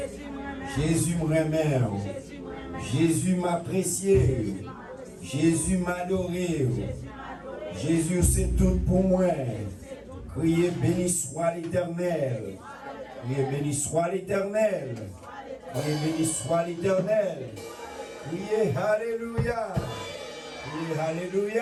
Jésus me remet. Jésus m'apprécie. Jésus m'adoré. Jésus c'est tout pour moi. Criez béni soit l'Éternel. Criez béni soit l'Éternel. Criez béni soit l'Éternel. Criez Alléluia. Criez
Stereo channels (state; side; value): identical; both; correlation 1.00